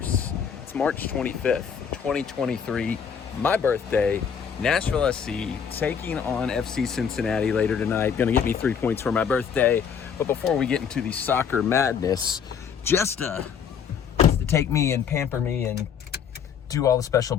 it's March 25th, 2023, my birthday, Nashville SC taking on FC Cincinnati later tonight. Gonna get me 3 points for my birthday. But before we get into the soccer madness, just to take me and pamper me and do all the special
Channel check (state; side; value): quieter; right; 7.2 dB